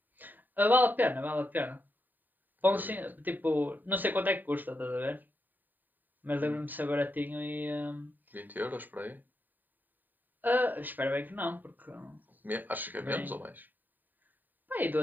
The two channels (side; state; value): left; late; 0.089 ms